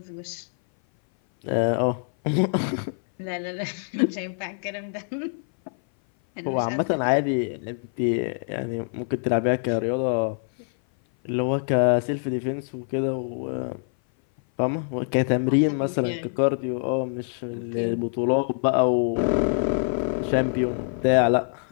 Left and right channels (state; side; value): silent; right; 58 dB below the other